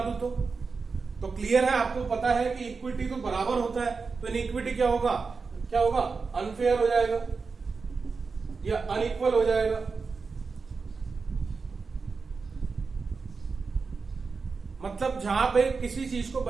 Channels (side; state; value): left; quieter; 4.7 dB